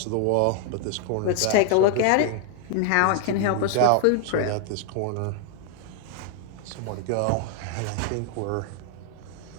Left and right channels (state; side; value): different; both; correlation -0.01